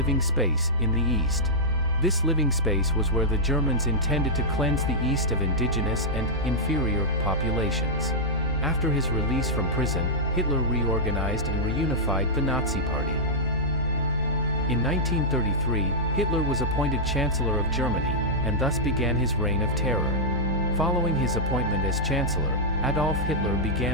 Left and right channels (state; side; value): normal; both; correlation -0.09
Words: space in the East. This living space was where the Germans intended to cleanse the East of indigenous and inferior populations. After his release from prison, Hitler reorganized and reunified the Nazi Party. In 1933, Hitler was appointed Chancellor of Germany, and thus began his reign of terror. Following his appointment as Chancellor, Adolf Hitler